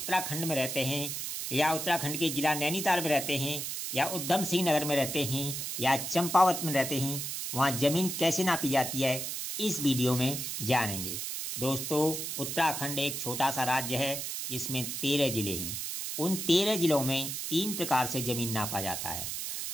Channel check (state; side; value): noise; right; hiss, 4 dB below the sound